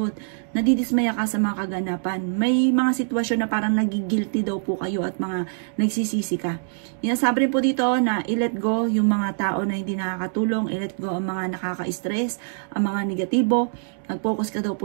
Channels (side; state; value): left; silent; digital silence